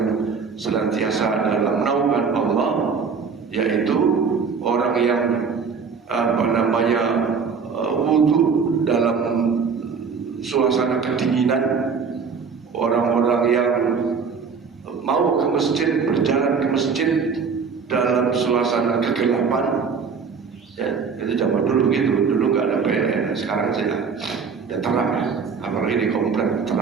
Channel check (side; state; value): left; quieter; 5.6 dB